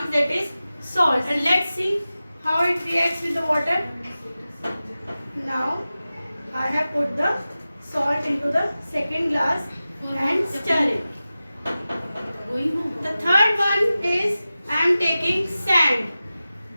that is salt. And let's see how it reacts with the water. Now, I have put the salt into the second glass and stir it. The third one is I am taking sand.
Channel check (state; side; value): inverted; both; correlation -0.95